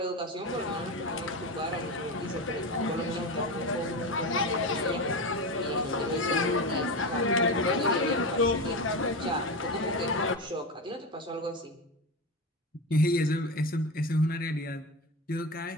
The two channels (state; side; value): normal; both; correlation 0.20